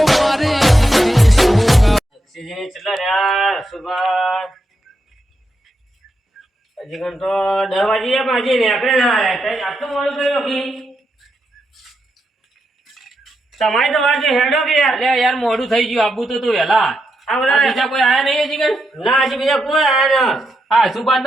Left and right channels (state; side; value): normal; both; correlation 0.84